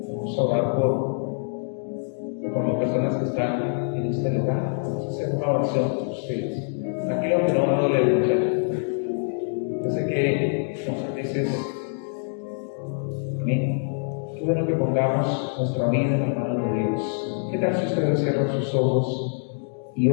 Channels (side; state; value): right; silent; digital silence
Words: vamos a orar por las personas que están en este lugar. Vamos a hacer una oración por ustedes. Aquí lo que no me duele mucho. Yo sé que muchas veces, amén, qué bueno que pongamos nuestra vida en la mano de Dios. ¿Qué tal si ustedes cierran sus ojos y